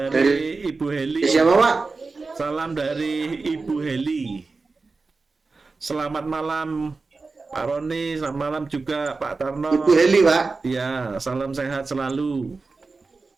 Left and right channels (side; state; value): left; quieter; 4.0 dB